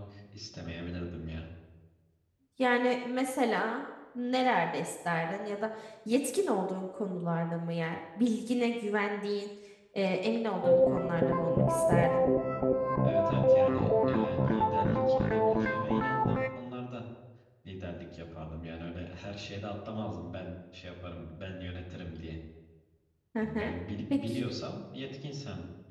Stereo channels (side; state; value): both; identical; correlation 1.00